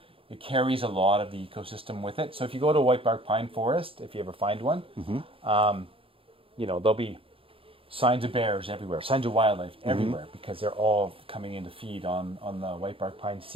it carries a lot of the ecosystem with it. So if you go to a whitebark pine forest, if you ever find one, there'll be signs of bears everywhere, signs of wildlife everywhere, because they're all coming in to feed on the whitebark pine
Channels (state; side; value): late; left; 0.26 ms